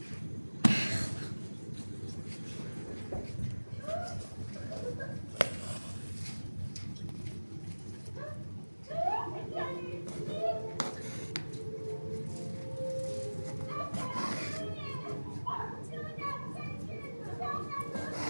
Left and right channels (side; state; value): both; inverted; correlation -1.00